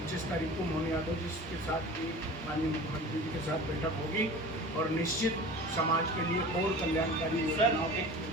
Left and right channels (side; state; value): both; normal; correlation 0.38